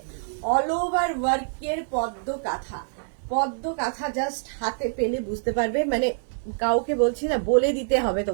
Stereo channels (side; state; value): left; silent; digital silence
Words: অল ওভার ওয়ার্কের পদ্ম কাঁথা, পদ্ম কাঁথা জাস্ট হাতে পেলে বুঝতে পারবে, মানে কাউকে বলছি না, বলে দিতে হবে